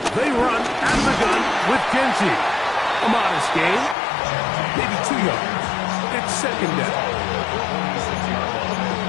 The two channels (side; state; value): right; drops out; at 4.0 s